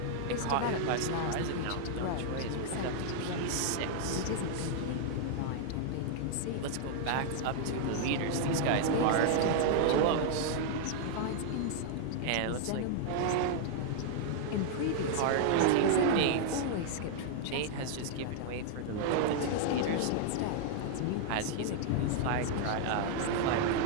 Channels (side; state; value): both; different; correlation 0.00